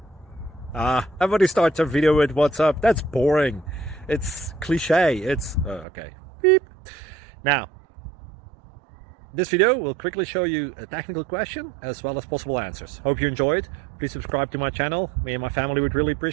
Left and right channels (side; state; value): left; drops out; at 5.9 s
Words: Everybody starts their video with what's up. That's boring. It's cliche. It's okay. Beep. Now, this video will quickly show you a technical question as well as possible answers. Hope you enjoy it. Please subscribe to my channel. Me and my family would really